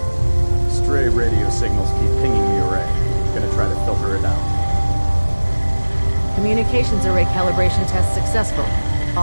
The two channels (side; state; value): both; inverted; correlation -1.00